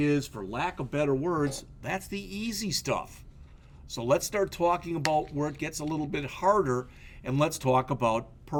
for lack of better words, that's the easy stuff. So let's start talking about where it gets a little bit harder, and let's talk about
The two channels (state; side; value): identical; both; correlation 1.00